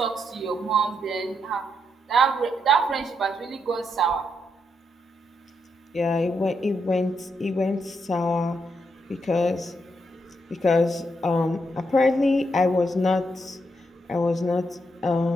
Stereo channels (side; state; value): both; normal; correlation 0.80